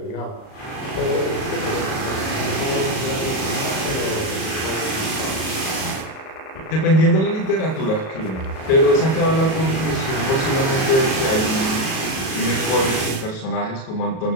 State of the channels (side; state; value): right; late; 38 ms